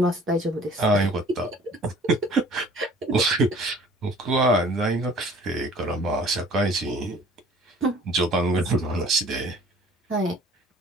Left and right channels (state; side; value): normal; both; correlation 0.51